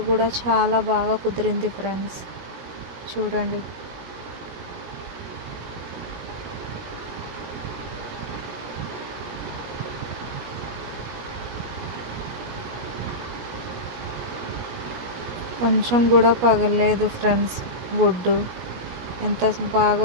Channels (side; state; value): left; late; 17 ms